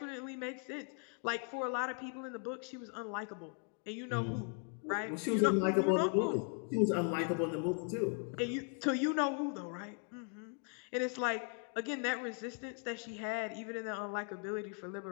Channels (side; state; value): right; quieter; 38.9 dB